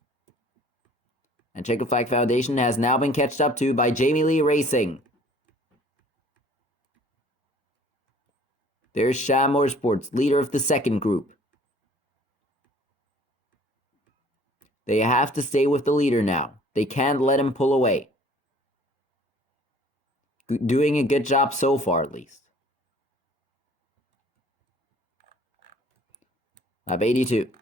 And Checkered Flag Foundation has now been catched up to by Jamie Lee Racing. There's Sham Motorsports, leader of the second group. They have to stay with the leader now. They can't let him pull away. Doing a good job so far, at least. Lap 82.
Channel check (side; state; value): both; normal; correlation 0.53